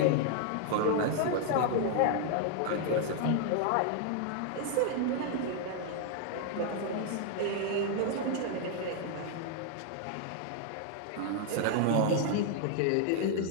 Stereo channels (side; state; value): both; different; correlation 0.00